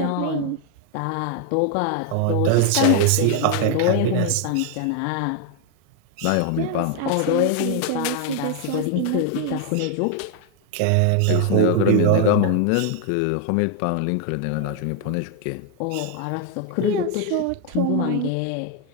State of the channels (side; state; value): both; different; correlation 0.00